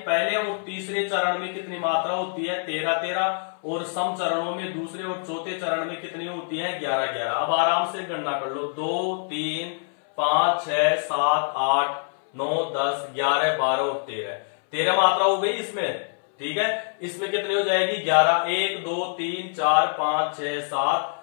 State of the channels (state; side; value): silent; right; 62 dB below the other